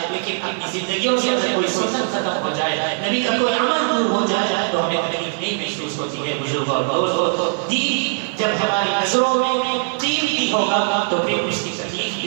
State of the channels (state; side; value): silent; left; digital silence